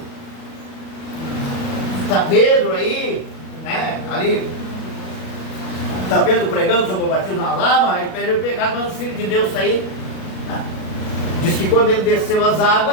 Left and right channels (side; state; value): right; late; 37 ms